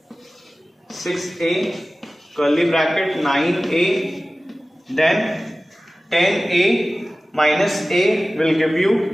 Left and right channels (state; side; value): normal; both; correlation 0.96